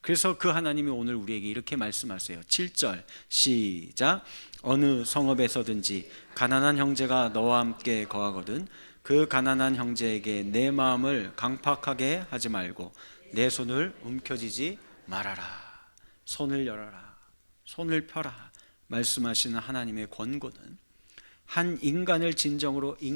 그래서 그 하나님이 오늘 우리에게 이렇게 말씀하세요. 7절 시작. 어느 성읍에서든지 가난한 형제가 너와 함께 거하거든 그 가난한 형제에게 내 마음을 강팍하게 하지 말고 내 손을 움켜쥐지 말아라. 손을 열어라, 손을 펴라 말씀하시는 하나님의 권고는 한 인간을 진정으로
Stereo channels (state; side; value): inverted; both; correlation -1.00